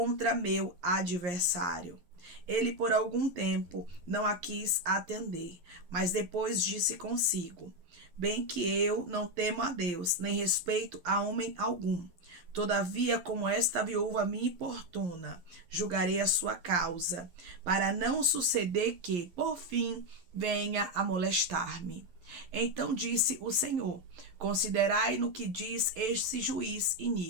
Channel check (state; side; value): late; left; 11 ms